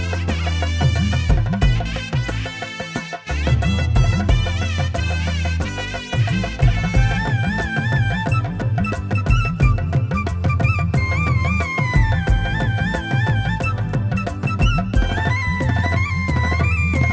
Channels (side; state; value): both; identical; correlation 1.00